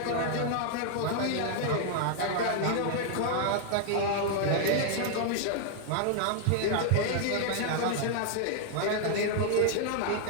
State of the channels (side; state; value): both; different; correlation 0.00